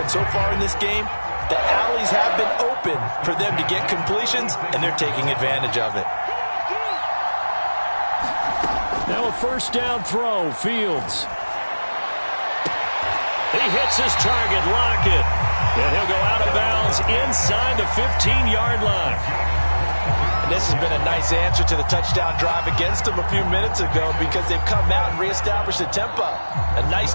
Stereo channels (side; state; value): both; inverted; correlation -1.00